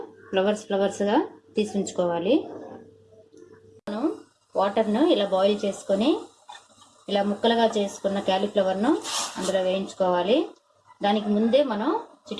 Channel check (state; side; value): identical; both; correlation 1.00